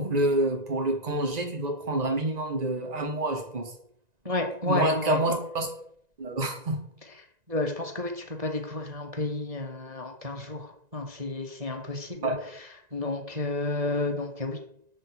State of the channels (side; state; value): left; late; 1.9 ms